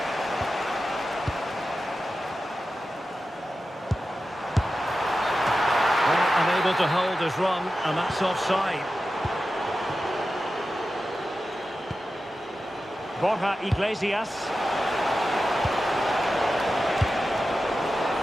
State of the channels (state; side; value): normal; both; correlation 0.92